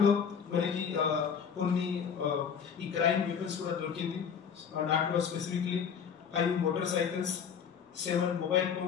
మనకి కొన్ని ఈ క్రైమ్ వెపన్స్ కూడా దొరికింది. దాంట్లో specifically 5 motor cycles, 7 mobile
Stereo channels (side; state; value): right; quieter; 7.1 dB